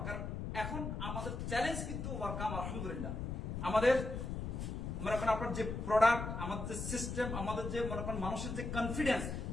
কারণ এখন আমাদের চ্যালেঞ্জ কিন্তু ওয়ার্কাম আলহামদুলিল্লাহ। আমাদের মনে করেন আপনার যে প্রোডাক্ট, আমাদের যে সিস্টেম, আমাদের যে মনে করেন মানুষের যে কনফিডেন্স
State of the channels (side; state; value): left; noise; rumble, 4 dB below the sound